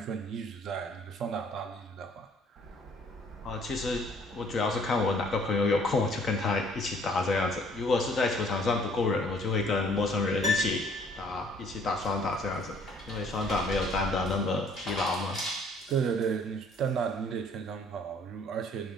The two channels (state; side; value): normal; both; correlation 0.59